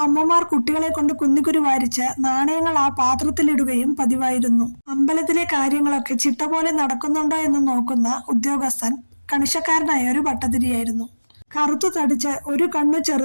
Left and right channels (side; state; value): both; inverted; correlation -1.00